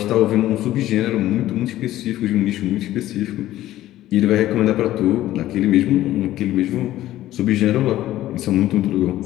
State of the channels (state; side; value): quieter; right; 14.4 dB